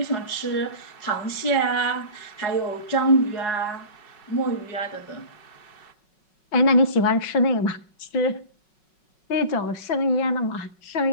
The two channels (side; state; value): right; late; 5.4 ms